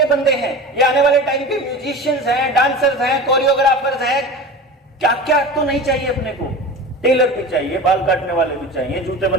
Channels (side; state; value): both; normal; correlation 0.32